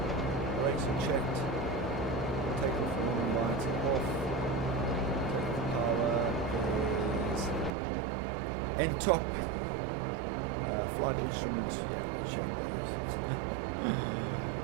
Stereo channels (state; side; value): drops out; left; at 7.7 s